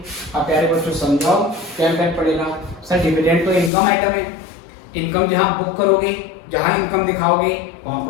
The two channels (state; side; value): drops out; right; at 3.7 s